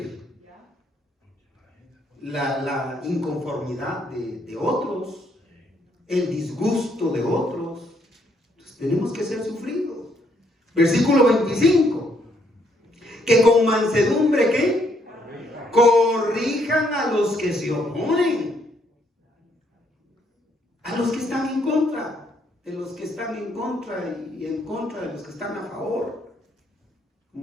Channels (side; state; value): both; normal; correlation 0.71